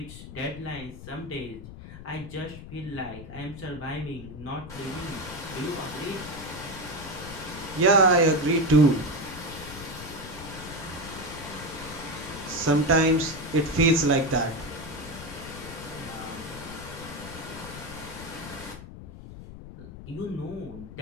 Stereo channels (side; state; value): left; noise; rumble, 13 dB below the sound